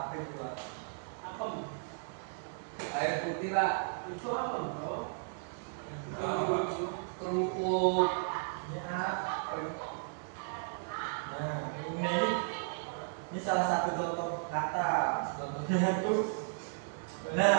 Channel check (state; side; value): silent; left; digital silence